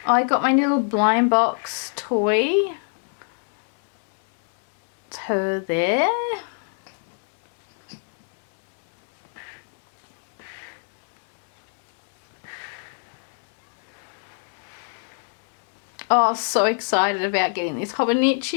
Oh, I got my little blind box toy. It's her there. Oh, so excited about getting this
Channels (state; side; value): silent; right; 56 dB below the other